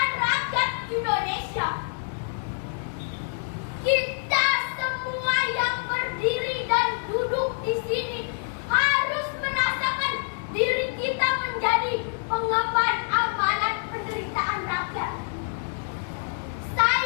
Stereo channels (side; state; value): right; silent; digital silence